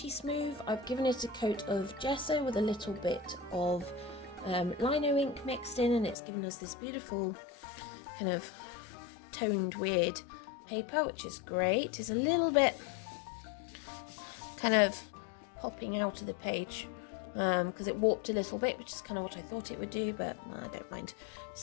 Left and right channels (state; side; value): drops out; right; at 6.2 s